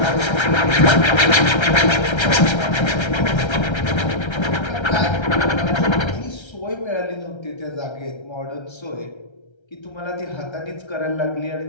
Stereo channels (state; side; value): late; right; 1.3 ms